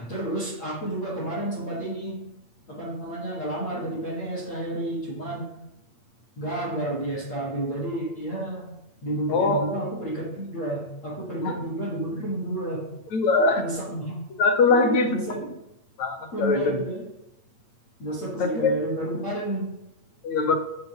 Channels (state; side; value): late; right; 8.7 ms